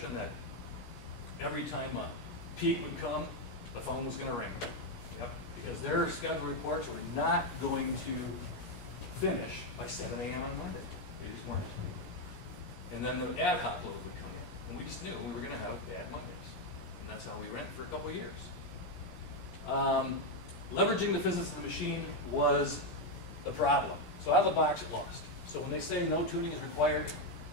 that every time a peak would come, the phone was going to ring. Yep. Because their schedule reports were not going to finish by 7 a.m. on Monday. They just weren't. And then the ad hoc load would come in. And we just knew we were going to have bad Mondays. And that's how we ran it for a couple of years. Leveraging the physics of the machine was the problem. So out of the box, it lost. So when they say no tuning is required,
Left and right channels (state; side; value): late; right; 17 ms